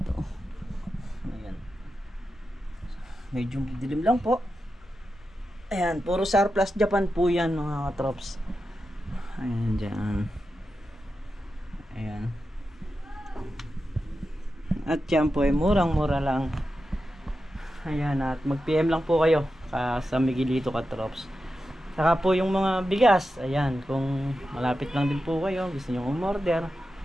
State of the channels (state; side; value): normal; both; correlation 0.90